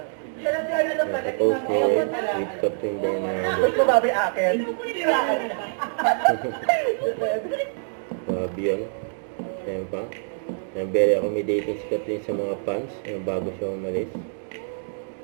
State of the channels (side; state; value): left; silent; 62 dB below the other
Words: Nakapost ni with Catherine Bernardo. Gusto babi akin. Babi yun. Ayan pa. Ayan, very accommodating si Catherine sa mga fans. Ayan, bago siya umalis.